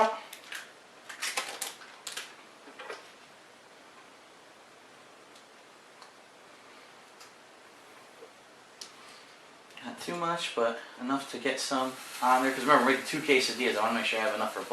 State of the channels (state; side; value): identical; both; correlation 1.00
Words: Too much, but enough to get some on there, because remember, we're making two quesadillas. I want to make sure I have enough for